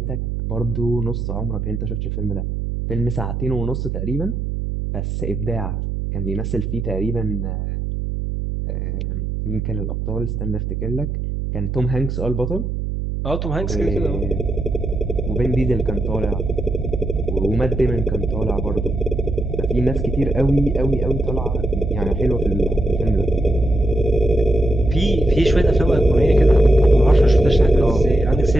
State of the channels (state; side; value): noise; right; hum, 3 dB below the sound